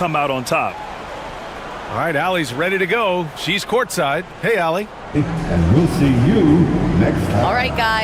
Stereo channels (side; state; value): both; identical; correlation 1.00